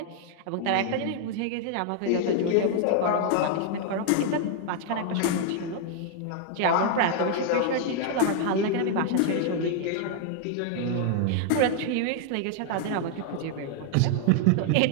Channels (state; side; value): different; both; correlation 0.00